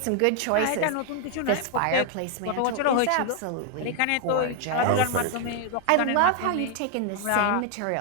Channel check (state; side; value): different; both; correlation 0.00